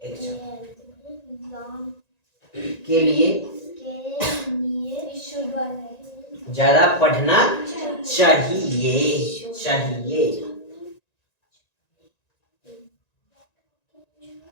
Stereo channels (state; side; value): late; right; 1.9 ms